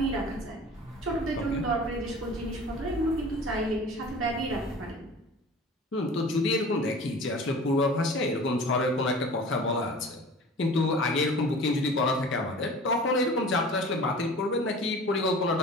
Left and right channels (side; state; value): both; normal; correlation 0.41